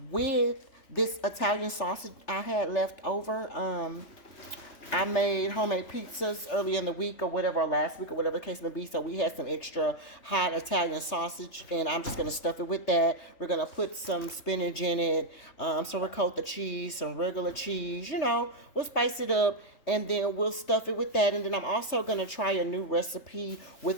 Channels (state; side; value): late; right; 3.3 ms